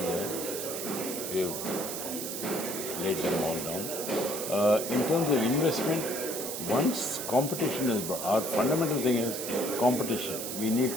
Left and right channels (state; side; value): noise; right; hiss, 5 dB below the sound